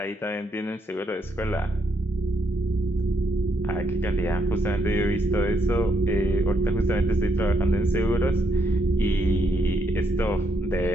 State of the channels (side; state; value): both; normal; correlation 0.76